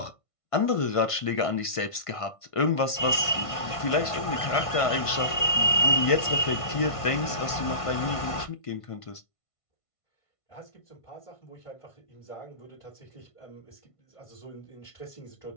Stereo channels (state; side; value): late; right; 1.5 ms